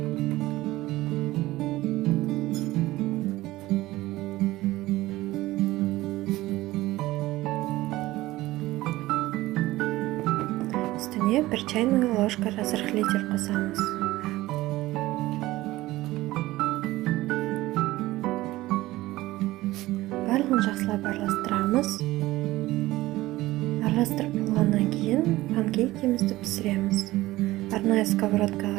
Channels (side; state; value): left; quieter; 17.6 dB